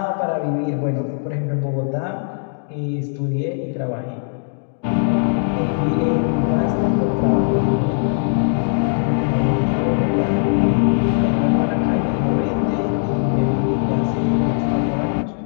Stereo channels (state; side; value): silent; right; digital silence